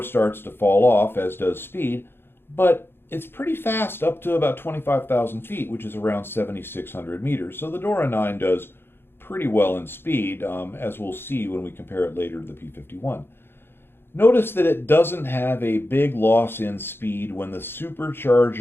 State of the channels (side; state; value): right; late; 0.11 ms